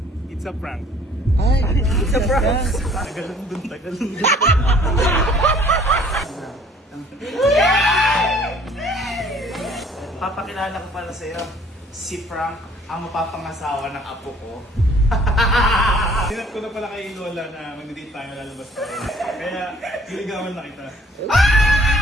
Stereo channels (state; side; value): normal; both; correlation 0.55